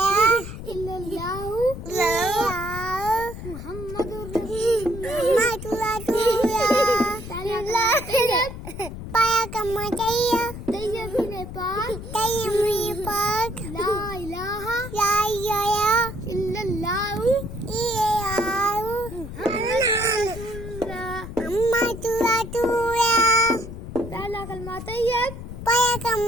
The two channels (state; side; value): noise; left; rumble, 10 dB below the sound